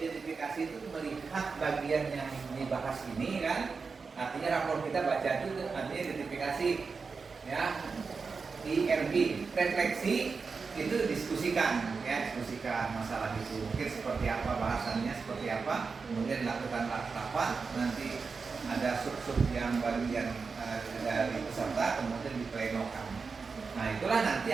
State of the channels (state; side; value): quieter; left; 4.8 dB